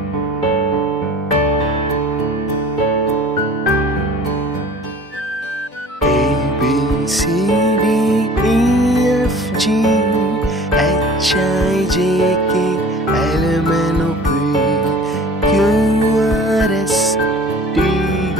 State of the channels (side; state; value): both; normal; correlation 0.45